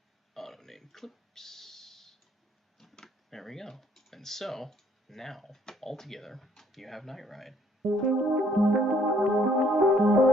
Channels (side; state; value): both; normal; correlation 0.64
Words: Auto name clips. There we go. And so, now, all together, you have Night Ride.